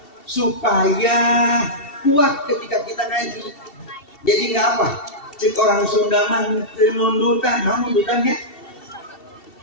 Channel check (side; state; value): right; late; 2.7 ms